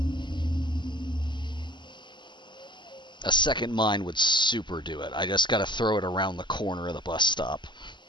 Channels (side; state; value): right; late; 0.22 ms